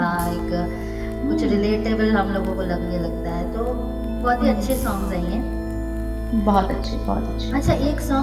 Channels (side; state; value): both; identical; correlation 1.00